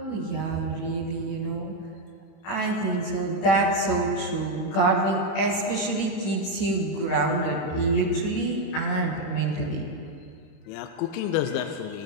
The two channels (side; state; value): right; late; 31 ms